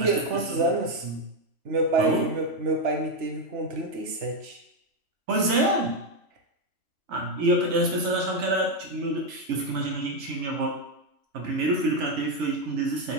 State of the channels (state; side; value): late; left; 3.0 ms